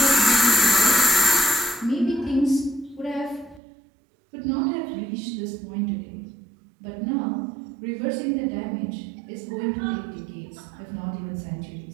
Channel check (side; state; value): left; drops out; at 3.6 s